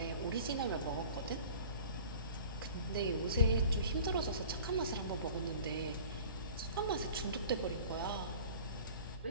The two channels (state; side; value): inverted; both; correlation -0.43